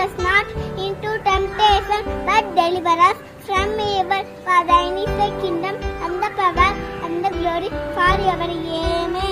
us not into temptation, but deliver us from evil. For thine is the kingdom, and the power, and the glory, forever.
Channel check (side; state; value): both; identical; correlation 1.00